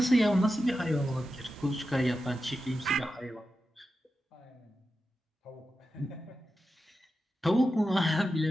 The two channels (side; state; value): both; normal; correlation 0.91